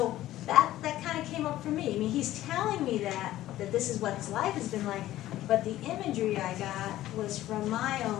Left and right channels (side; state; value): right; quieter; 14.5 dB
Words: that kind of came up for me. I mean, he's telling me that this is what his life has been like, but the imagery I got was from my